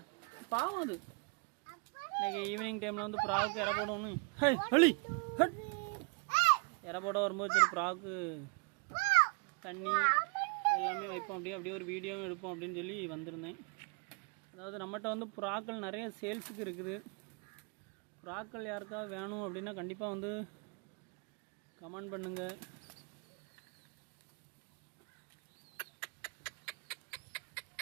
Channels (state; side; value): quieter; left; 33.7 dB